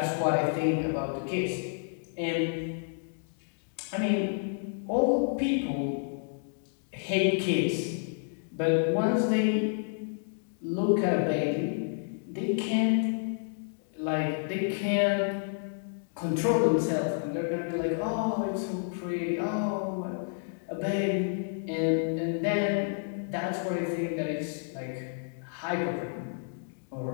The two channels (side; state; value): right; silent; digital silence